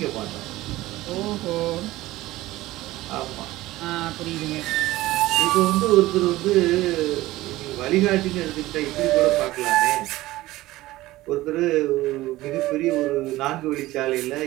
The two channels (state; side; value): quieter; left; 17.4 dB